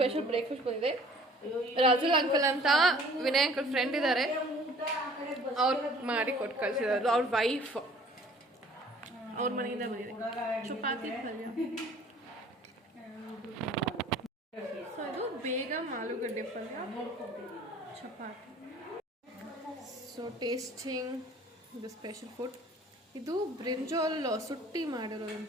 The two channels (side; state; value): both; normal; correlation 0.52